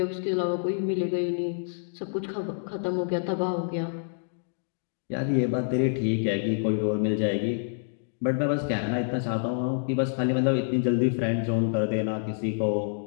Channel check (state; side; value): silent; right; digital silence